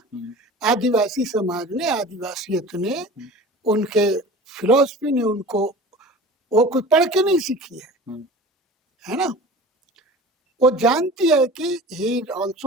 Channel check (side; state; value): both; normal; correlation 0.39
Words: आदिवासी समाज ने, आदिवासियत ने, उनके फिलॉसफी ने उनको, वो कोई पढ़ के नहीं सीखी है ना। वो जानती है कि he is